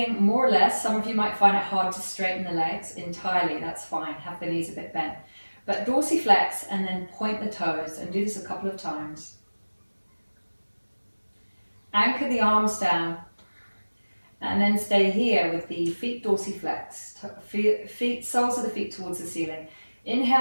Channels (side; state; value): both; inverted; correlation -1.00